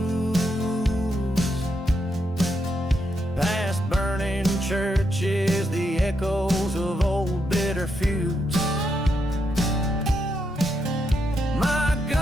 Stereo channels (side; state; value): both; normal; correlation 0.81